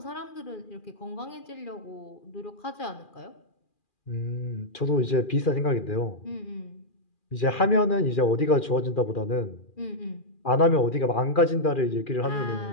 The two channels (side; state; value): right; late; 2.4 ms